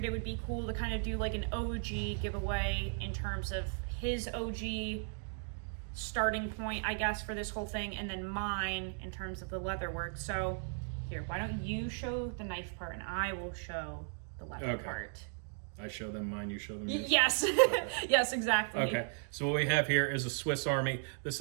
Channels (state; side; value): silent; left; 54 dB below the other